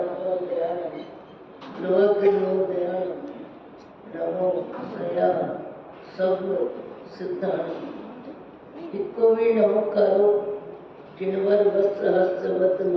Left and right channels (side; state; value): both; identical; correlation 1.00